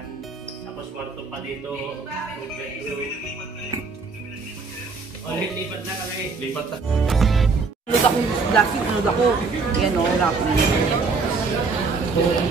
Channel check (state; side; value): quieter; left; 4.4 dB